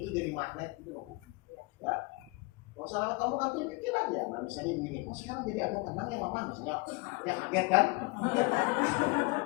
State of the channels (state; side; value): quieter; right; 26.4 dB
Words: jadi magnet gitu loh. Ya. Oh salah kamu kan tunjukin aja. Nah misalnya begini, kok sekarang jadi agak tenang ya mama misalnya, ya kaget kan?